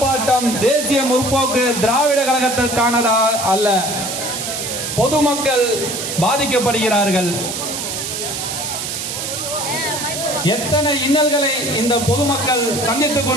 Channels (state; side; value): noise; right; hiss, 4 dB below the sound